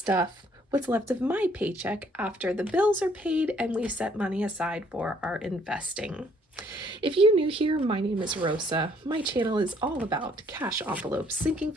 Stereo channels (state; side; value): normal; both; correlation 0.64